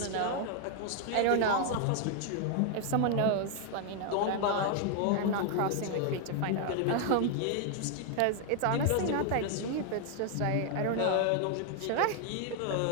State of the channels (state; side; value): different; both; correlation 0.00